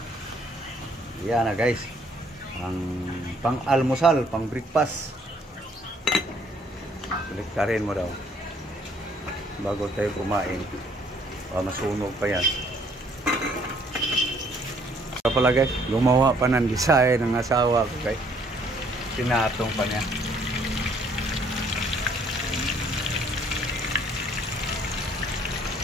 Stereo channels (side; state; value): both; normal; correlation 0.63